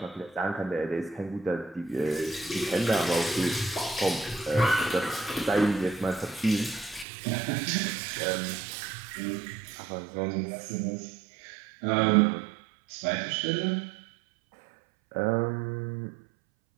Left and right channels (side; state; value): left; drops out; at 7.1 s